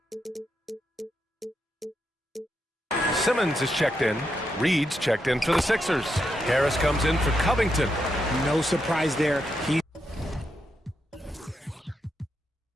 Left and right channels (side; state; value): both; normal; correlation 0.83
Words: Simmons is checked in. Reed's checked in for the Sixers. Harris comes in for Covington. No surprise there. He's